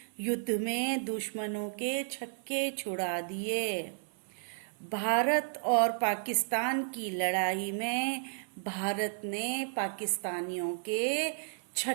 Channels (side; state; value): left; silent; 56 dB below the other